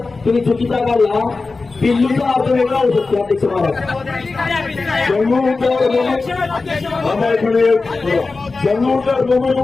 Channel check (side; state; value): right; quieter; 3.9 dB